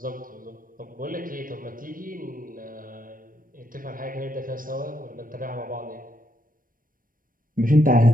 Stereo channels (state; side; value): late; left; 0.40 ms